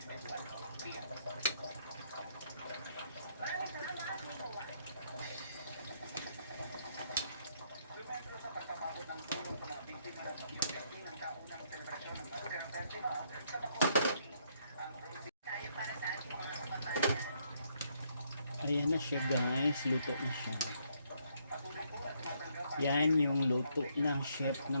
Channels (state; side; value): inverted; both; correlation -0.72